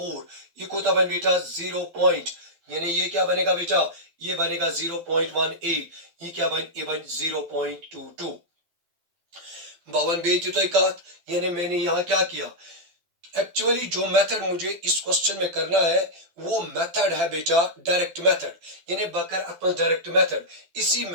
यह कोता बन बेटा 0 पॉइंट यानी ये क्या बनेगा बेटा ये बनेगा 0.18 ये क्या बन ये बन 0.22 बावन बेटी तो कत यानी मैंने यहाँ क्या किया एक्चुअली जो मेथड मुझे इस क्वेश्चन में करना है वो मेथड है बेटा डायरेक्ट मेथड यानी बकर अपन डायरेक्ट मेथड इसी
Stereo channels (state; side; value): late; left; 12 ms